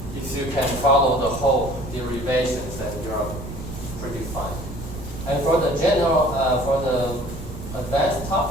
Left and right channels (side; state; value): right; noise; rumble, 11 dB below the sound